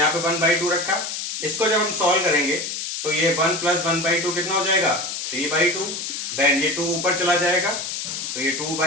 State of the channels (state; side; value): noise; left; hiss, 5 dB below the sound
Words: पे 1/2 रखा, इसको जब हम सॉल्व करेंगे तो ये 1 प्लस 1/2 कितना हो जाएगा 3/2। देन ये 2 ऊपर चला जाएगा तो ये